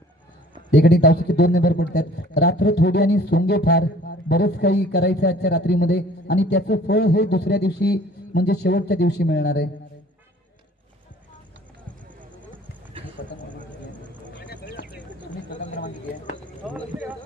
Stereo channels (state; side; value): normal; both; correlation 0.52